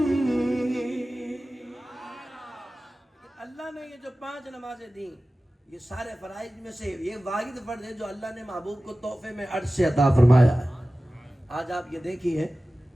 اللہ نے یہ جو 5 نمازیں دیں یہ سارے فرائض میں سے یہ واحد فرض ہے جو اللہ نے محبوب کو تحفے میں عرش سے عطا فرمایا ہے۔ آج آپ یہ دیکھیے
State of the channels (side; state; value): both; normal; correlation 0.96